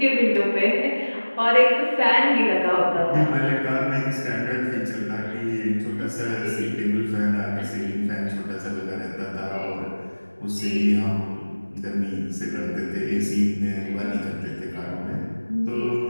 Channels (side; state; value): both; inverted; correlation -1.00